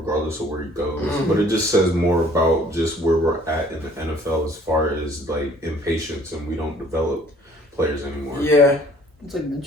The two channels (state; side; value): normal; both; correlation 0.56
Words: of where he goes, but it just says more about just where we're at in the NFL as far as like impatience, and we don't develop players anymore. Yeah, it's like